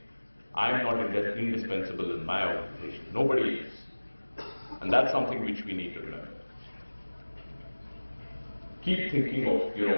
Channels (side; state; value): both; inverted; correlation -1.00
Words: I am not indispensable in my organization. Nobody is. And that's something which we need to remember. Keep thinking of,